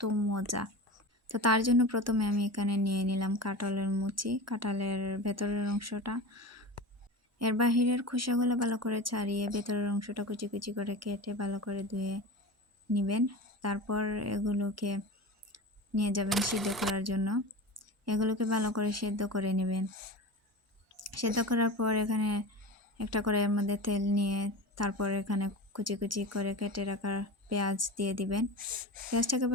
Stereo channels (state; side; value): normal; both; correlation 0.29